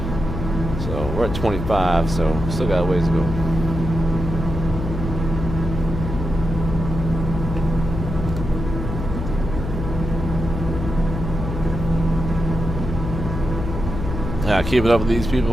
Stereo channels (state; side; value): noise; left; hum, 5 dB below the sound